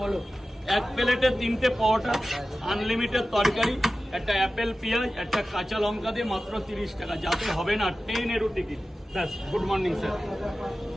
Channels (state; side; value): normal; both; correlation 0.95